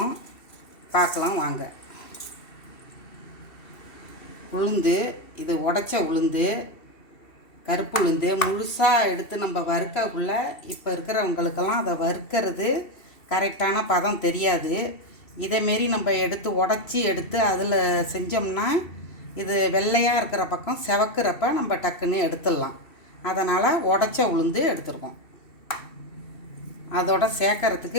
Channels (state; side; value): late; right; 2.7 ms